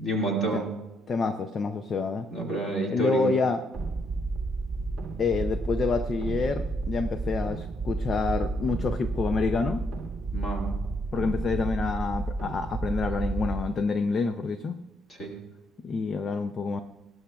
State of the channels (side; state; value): both; normal; correlation 0.75